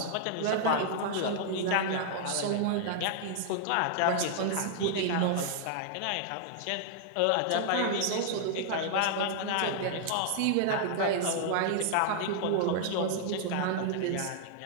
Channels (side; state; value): both; different; correlation -0.01